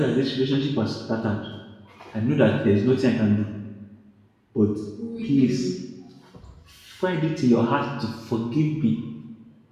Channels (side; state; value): both; identical; correlation 1.00